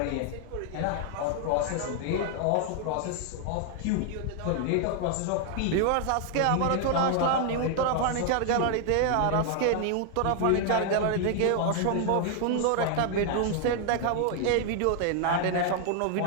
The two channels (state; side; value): different; both; correlation 0.00